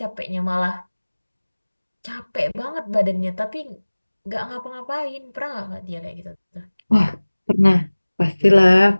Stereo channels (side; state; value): both; inverted; correlation -1.00